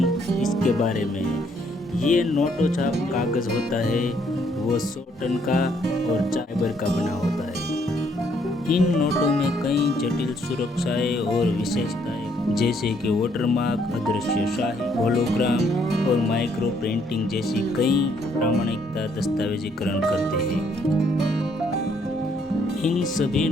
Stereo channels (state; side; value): normal; both; correlation 0.69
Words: इसके बारे में। ये नोटो छाप कागज़ होता है, वो 100 टन का और फाइबर का बना होता है। इन नोटों में कई जटिल सुरक्षाएं और विशेषताएं जैसे कि वाटरमार्क, अदृश्य शाही, होलोग्राम और माइक्रो प्रिंटिंग जैसी कई प्रामाणिकता दस्तावेजीकरण करते हैं। इन सभी